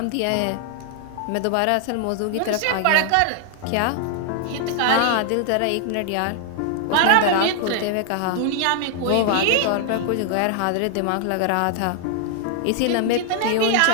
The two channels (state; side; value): different; both; correlation 0.00